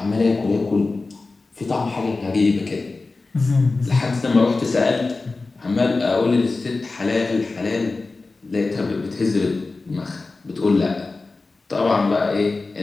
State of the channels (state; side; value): quieter; right; 3.6 dB